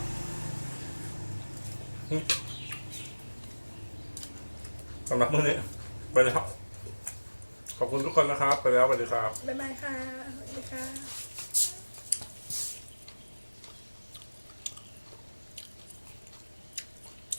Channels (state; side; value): inverted; both; correlation -1.00